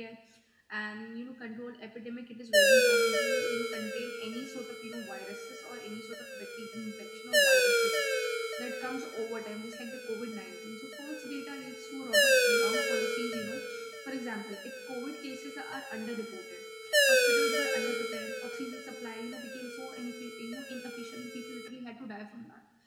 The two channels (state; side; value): identical; both; correlation 1.00